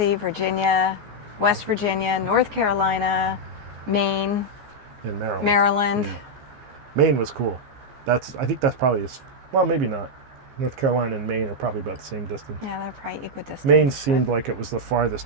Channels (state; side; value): late; left; 14 ms